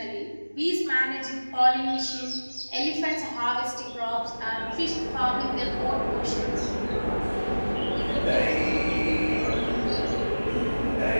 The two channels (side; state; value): both; inverted; correlation -1.00